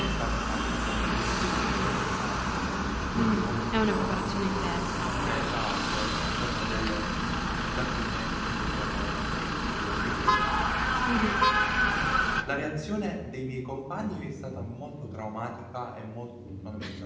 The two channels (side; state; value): both; identical; correlation 1.00